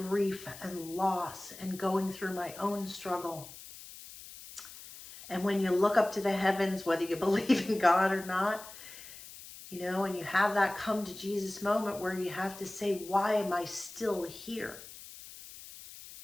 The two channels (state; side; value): noise; left; hiss, 15 dB below the sound